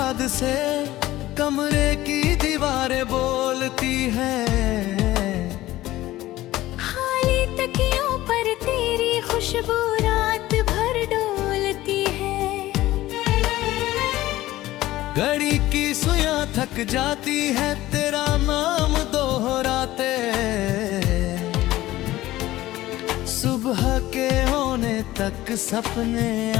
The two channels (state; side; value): quieter; right; 16.2 dB